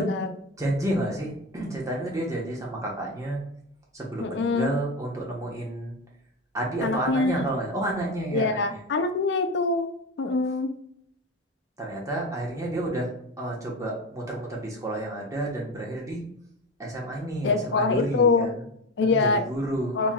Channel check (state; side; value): normal; both; correlation 0.21